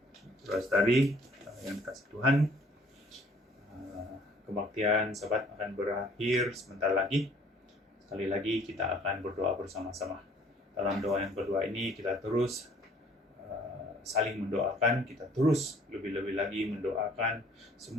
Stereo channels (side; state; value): both; normal; correlation 0.57